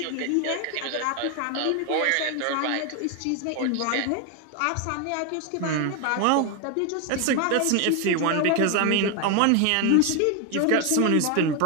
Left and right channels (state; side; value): different; both; correlation 0.01